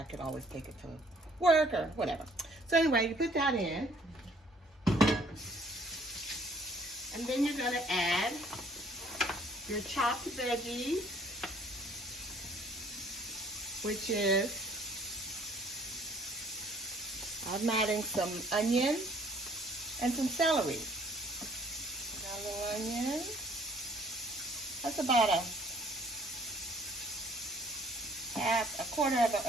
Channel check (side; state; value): both; normal; correlation 0.59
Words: could always take it to work or whatever. So anyway, you put that in. And then you're going to add your chopped veggies, which is, I'm adding some onion and some celery. Got a little onion. That's about a quarter of an